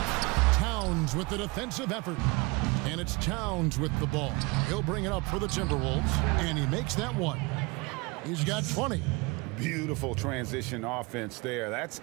Towns with the defensive effort. And it's Towns with the ball. He'll bring it up for the Timberwolves, and he makes that one. He's got 20. Beautiful transition offense there. That's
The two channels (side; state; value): left; quieter; 25.6 dB